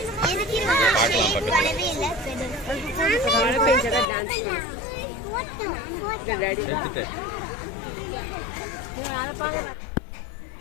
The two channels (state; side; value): drops out; right; at 4.0 s